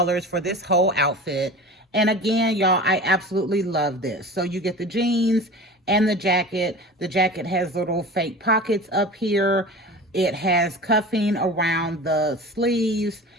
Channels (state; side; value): normal; both; correlation 0.35